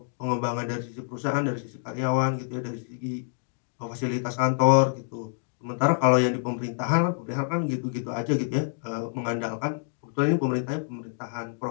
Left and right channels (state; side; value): silent; right; digital silence